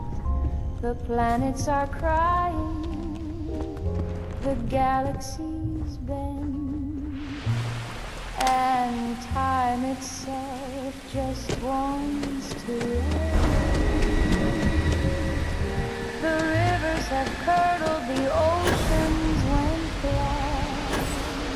The planets are crying, the galaxies bend, and time itself just wants to end. The rivers have curdled, the oceans went blind.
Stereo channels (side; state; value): both; identical; correlation 1.00